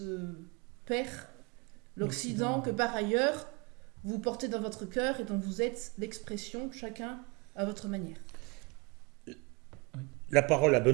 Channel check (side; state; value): left; quieter; 28.6 dB